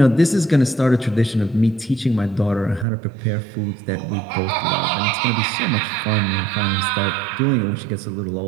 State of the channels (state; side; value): drops out; left; at 2.9 s